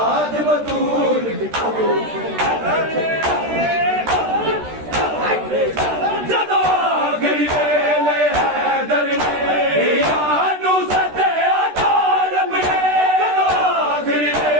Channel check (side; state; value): left; late; 13 ms